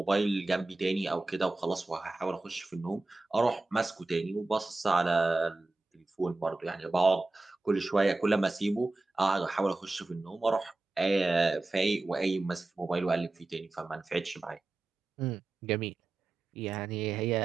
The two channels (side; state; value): left; quieter; 3.1 dB